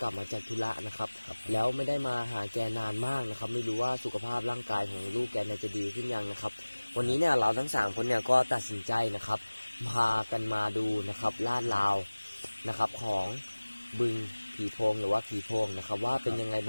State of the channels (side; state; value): both; inverted; correlation -1.00